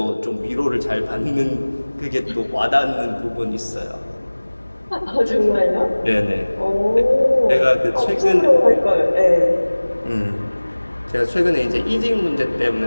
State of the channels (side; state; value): both; inverted; correlation -1.00